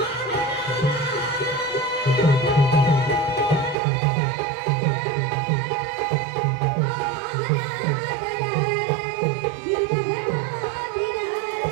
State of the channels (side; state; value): left; drops out; at 3.8 s